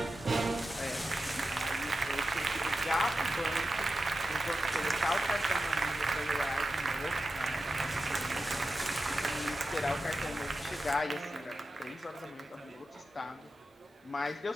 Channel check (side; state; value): both; normal; correlation 0.91